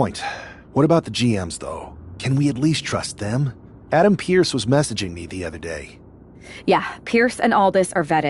What about the GMs, though? Can we at least trust them? Adam Pearce was messaging me the other day. Yeah, Pierce and Aldis are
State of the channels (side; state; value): both; identical; correlation 1.00